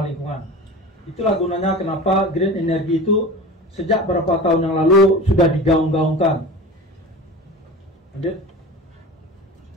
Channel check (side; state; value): both; normal; correlation 0.34